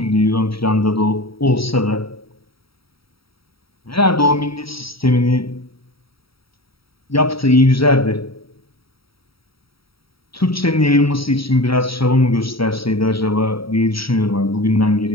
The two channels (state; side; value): late; right; 0.75 ms